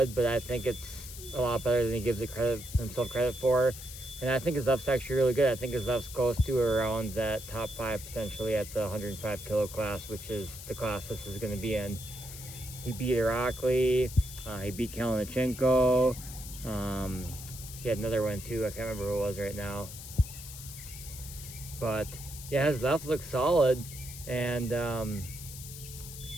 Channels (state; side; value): noise; left; hiss, 12 dB below the sound